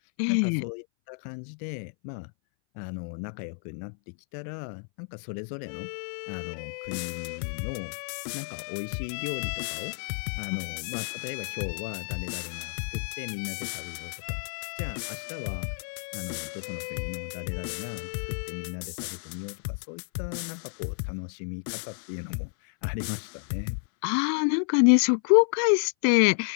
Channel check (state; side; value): silent; right; 58 dB below the other